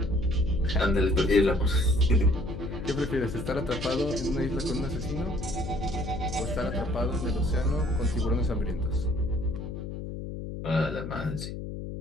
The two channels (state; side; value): noise; left; hum, 7 dB below the sound